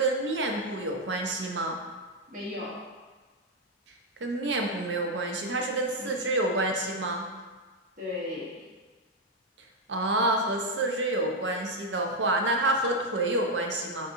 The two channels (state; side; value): normal; both; correlation 0.02